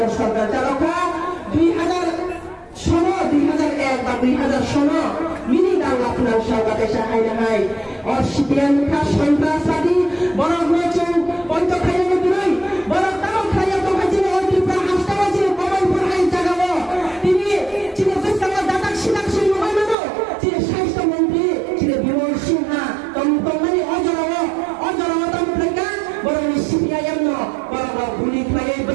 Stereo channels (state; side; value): drops out; left; at 20.0 s